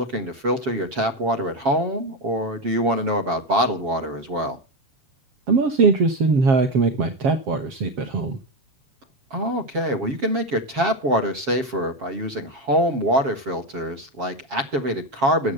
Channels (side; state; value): left; late; 7.3 ms